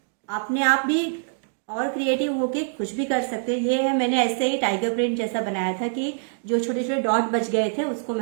अपने आप भी और क्रिएटिव होके कुछ भी कर सकते हैं। ये है, मैंने ऐसे ही टाइगर प्रिंट जैसा बनाया था कि जो छोटे छोटे डॉट बच गए थे उसको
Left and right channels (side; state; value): left; silent; digital silence